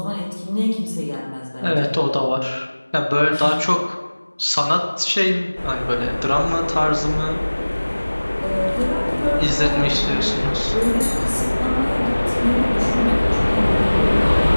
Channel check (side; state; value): both; inverted; correlation -1.00